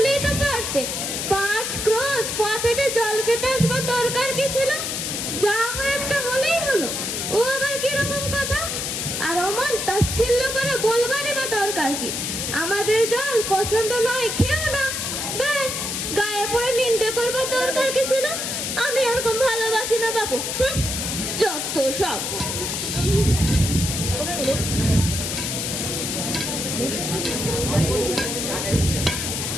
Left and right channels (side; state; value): left; noise; hiss, 2 dB below the sound